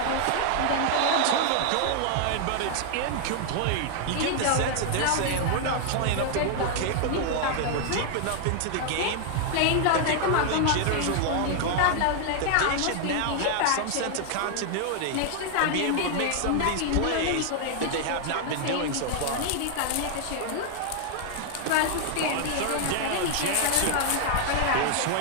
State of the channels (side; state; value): both; different; correlation 0.00